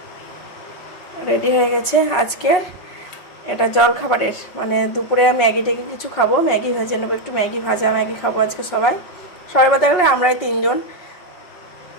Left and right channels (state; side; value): late; right; 5.5 ms